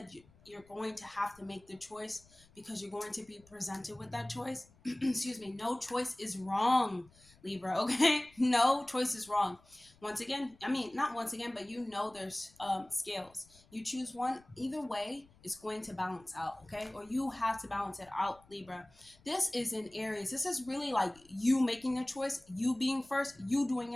you're going to have to make the choice, because you're going to be presented with that choice. Excuse me. No choice is wrong, Libra. Okay. No choice is wrong. Once again, not once again, but there's scales. You choose one, either way, it's going to balance out. Okay. Or you have to balance it out, Libra. This is in Aries. This is really like you making the choice, you being first, you doing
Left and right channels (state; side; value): noise; left; rumble, 28 dB below the sound